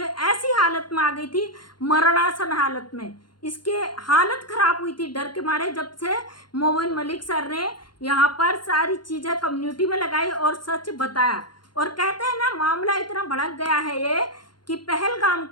ऐसी हालत में आ गई थी, मरणासन हालत में इसके हालत खराब हुई थी डर के मारे, जब से मोमिन मलिक सर ने यहाँ पर सारी चीज़ें कम्युनिटी में लगाई और सच बताया। और कहते हैं ना, मामला इतना भड़क गया है ये कि पहलगाम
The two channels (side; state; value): right; late; 0.71 ms